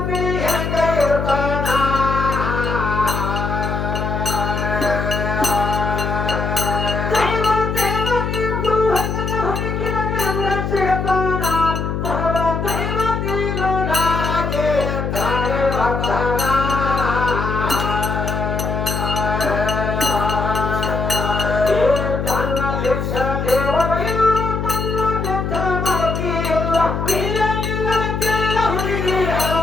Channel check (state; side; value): noise; left; hum, 2 dB below the sound